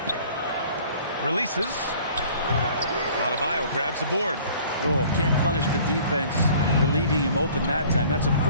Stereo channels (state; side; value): inverted; both; correlation -0.51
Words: Releases. Adebayo grabs the board. Oh, can't punish the defense for leaving him open that time. That's a